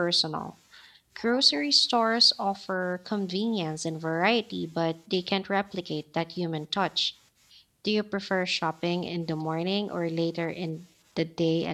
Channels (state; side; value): identical; both; correlation 1.00